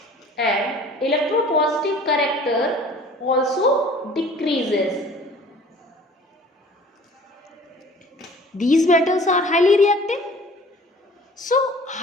And electropositive character also decreases. These metals are highly reactive. So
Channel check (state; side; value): normal; both; correlation 0.48